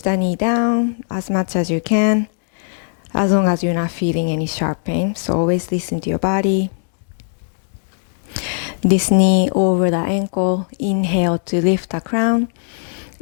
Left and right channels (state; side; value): silent; right; digital silence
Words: knee down as much as you can, as long as you're not feeling any sharp pain. So always listen to your body. This knee over the ankle. Inhale to lift the crown.